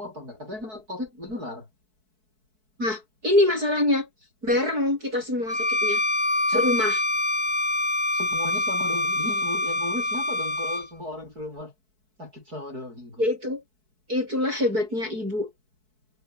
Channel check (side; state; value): left; late; 4.6 ms